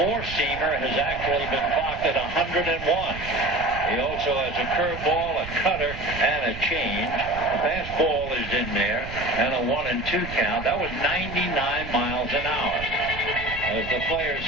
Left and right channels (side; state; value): right; noise; rumble, 11 dB below the sound